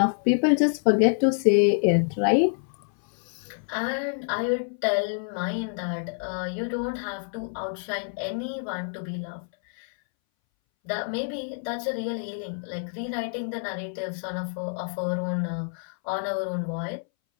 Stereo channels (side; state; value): right; silent; 60 dB below the other